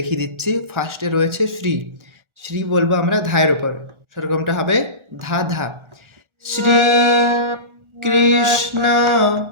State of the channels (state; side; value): late; left; 1.4 ms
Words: দিচ্ছি। ফার্স্টে রয়েছে শ্রী। শ্রী বলবো আমরা ধায়ের ওপর, সেরকমটা হবে ধা ধা। শ্রী কৃষ্ণ,